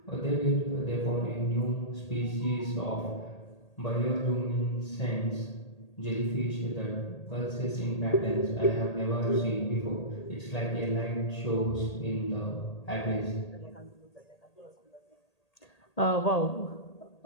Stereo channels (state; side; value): late; right; 1.8 ms